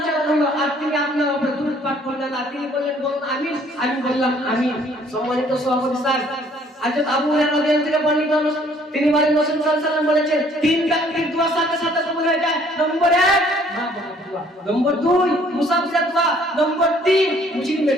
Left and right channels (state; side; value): normal; both; correlation 0.60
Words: হলো আর তিনি আপনার উপরে দুরূদ পাঠ করলেন না। তিনি বললেন আমিন। আমি বললাম আমিন। সম্মানিত সভাপতি স্যার, হযরত আবু হুরায়রা রাদিয়াল্লাহু থেকে বর্ণিত, তিনি বলেন রাসূল সাল্লাল্লাহু আলাইহি ওয়াসাল্লাম বলেছেন, তিন ব্যক্তির দোয়া সাথে সাথে কবুল হয়ে যায়। নম্বর 1 মা বাবার দোয়া, নম্বর 2 মুসাফিরের দোয়া, নম্বর 3